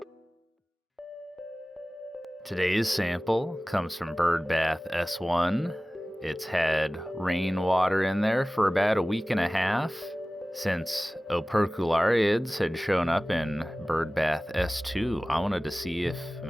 Today's sample comes from Bird Bath S1. It's had rainwater in there for about a week and a half. Since operculariids had shown up in Bird Bath S2, I wanted to see if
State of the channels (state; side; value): normal; both; correlation 0.98